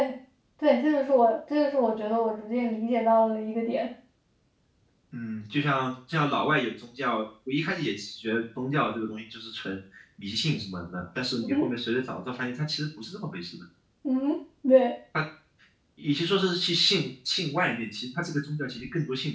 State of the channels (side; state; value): both; identical; correlation 1.00